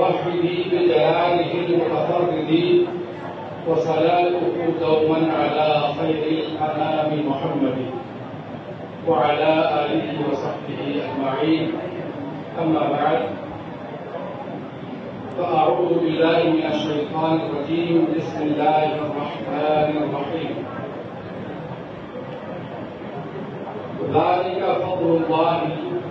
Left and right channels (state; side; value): identical; both; correlation 1.00